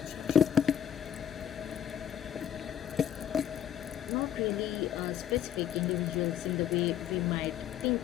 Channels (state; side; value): quieter; right; 9.8 dB